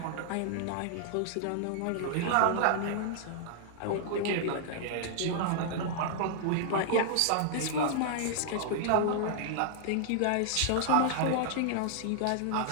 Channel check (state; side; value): different; both; correlation -0.01